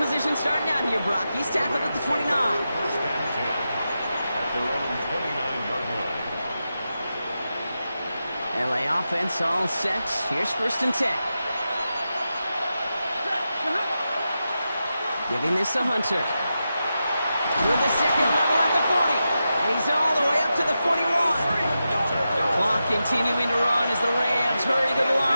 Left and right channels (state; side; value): inverted; both; correlation -0.90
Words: starting out here, Brock. He's tackled at the 29. First and 10 at their own 29-yard line. LA offense all set. Here's first and 10. Giving this to Hunter. With the second level at the 40. And he's all the way up to the 41. Clock continuing to run as the Rams hurry to the